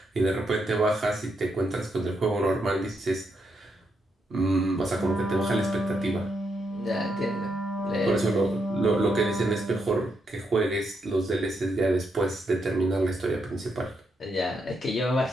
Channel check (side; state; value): both; normal; correlation 0.80